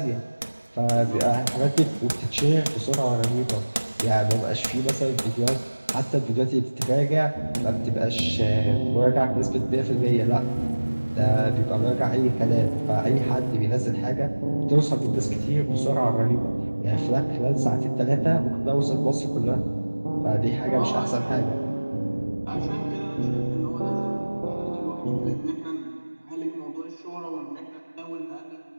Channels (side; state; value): both; inverted; correlation -1.00